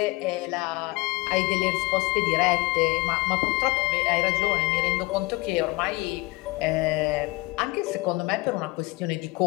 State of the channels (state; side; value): quieter; right; 22.3 dB